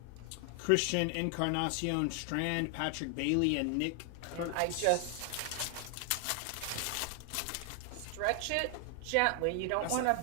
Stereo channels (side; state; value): both; different; correlation 0.00